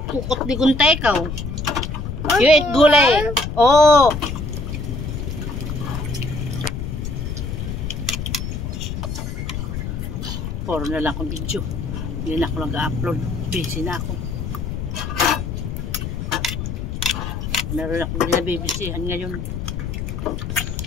Kukot di kuntay ka. You eat gulay. Oh. Puro na lang akong video. Hindi na ako nag-upload. Busy na ako. Meron akong binabibisihan ngayon.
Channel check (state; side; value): noise; left; rumble, 4 dB below the sound